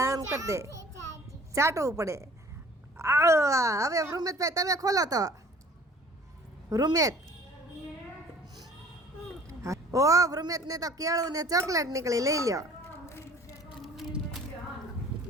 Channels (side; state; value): both; normal; correlation 0.52